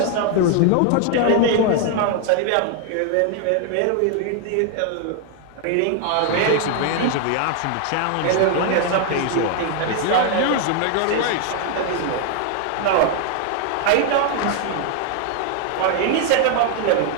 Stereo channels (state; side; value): different; both; correlation 0.00